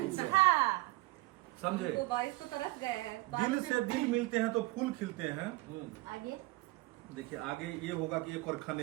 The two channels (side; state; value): left; quieter; 20.8 dB